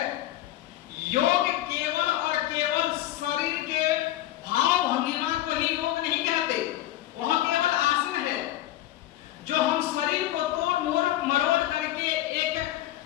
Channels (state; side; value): quieter; right; 14.2 dB